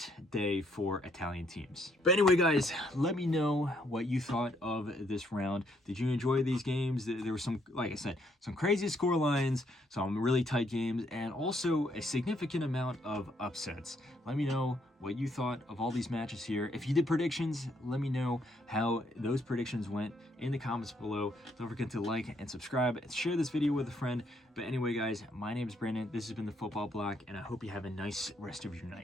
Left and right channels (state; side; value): normal; both; correlation 0.71